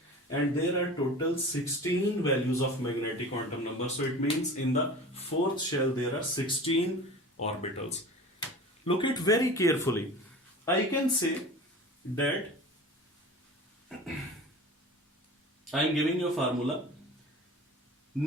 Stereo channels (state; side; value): normal; both; correlation 0.37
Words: and there are total 16 values of magnetic quantum number, so it means in the fourth shell there are 16 orbitals. Look it very carefully. I can say that I am giving you a formula.